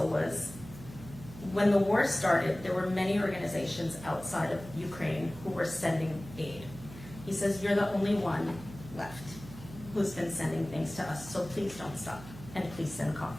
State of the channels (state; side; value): noise; right; hum, 15 dB below the sound